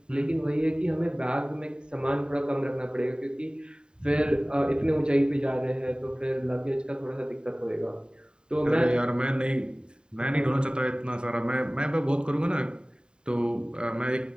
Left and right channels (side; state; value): left; late; 0.049 ms